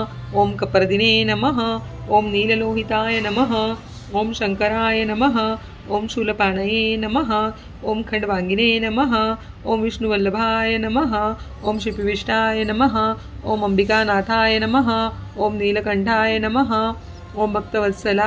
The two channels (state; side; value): identical; both; correlation 1.00